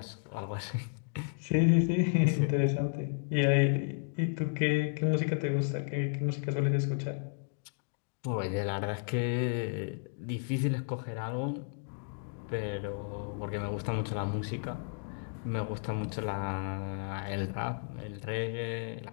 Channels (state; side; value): silent; right; digital silence